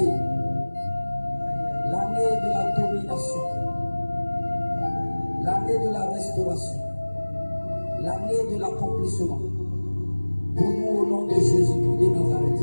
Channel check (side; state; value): both; inverted; correlation -1.00